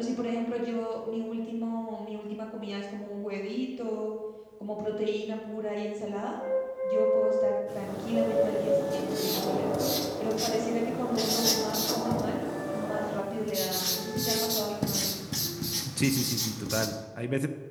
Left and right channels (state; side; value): identical; both; correlation 1.00